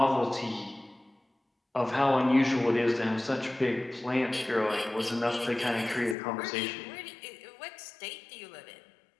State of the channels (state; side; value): drops out; right; at 6.2 s